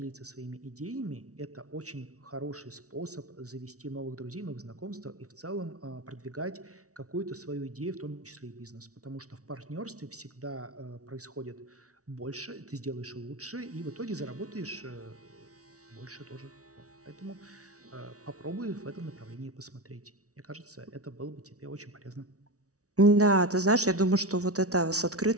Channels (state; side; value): late; left; 0.66 ms